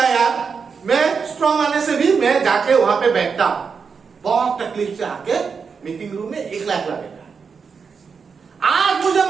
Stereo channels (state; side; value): quieter; left; 5.7 dB